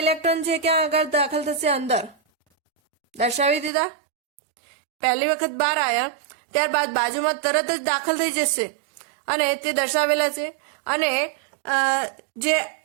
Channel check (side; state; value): left; drops out; at 3.7 s